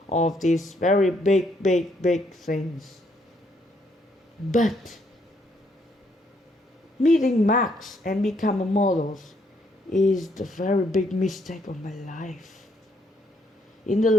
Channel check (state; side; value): normal; both; correlation 0.71